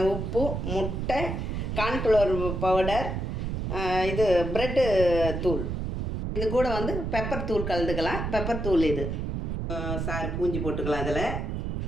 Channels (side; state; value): right; noise; rumble, 3 dB below the sound